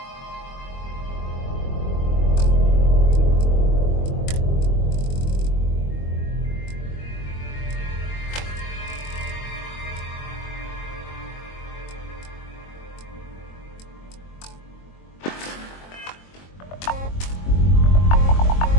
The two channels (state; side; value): late; right; 22 ms